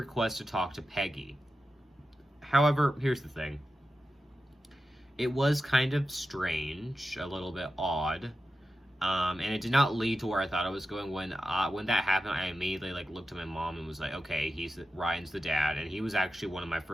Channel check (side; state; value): both; normal; correlation 0.91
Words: to talk to Peggy. However, here's the thing. It was kind of strange, a little bit odd, and it did not lead to where I thought it was going. When that happened, I immediately looked at my mom and was like, okay, Ryan's the dad, and he was actually one of my